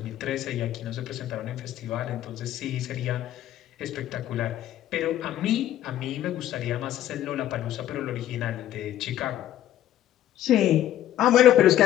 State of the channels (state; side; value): quieter; right; 12.2 dB